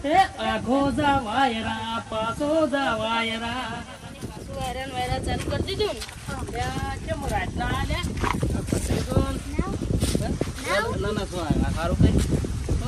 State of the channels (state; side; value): identical; both; correlation 1.00